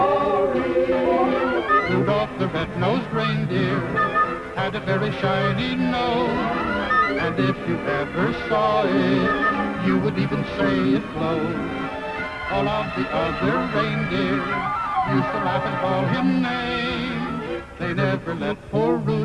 Rudolph the red-nosed reindeer had a very shiny nose, and if you ever saw it, you would even say it glowed. All of the other reindeer used to laugh and call him names. They never let poor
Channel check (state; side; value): identical; both; correlation 1.00